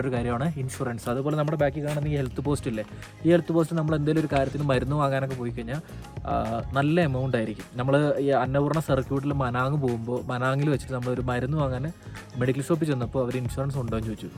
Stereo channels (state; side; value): identical; both; correlation 1.00